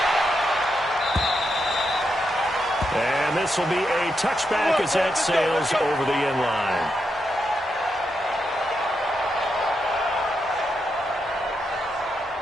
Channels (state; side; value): normal; both; correlation 0.83